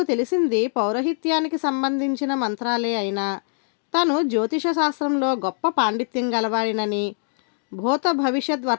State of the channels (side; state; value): right; silent; digital silence